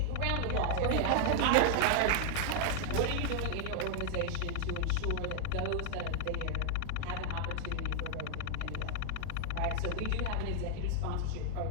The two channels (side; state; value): both; different; correlation 0.00